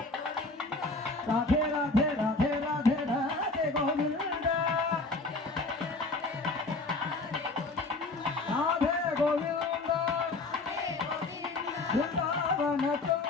రాధే రాధే రాధే రాధే రాధే గోవింద రాధే గోవింద బృందావన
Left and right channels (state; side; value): quieter; right; 3.3 dB